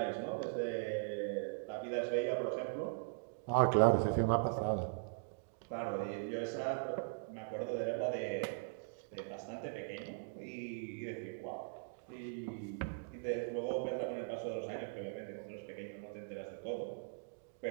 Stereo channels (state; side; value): silent; left; digital silence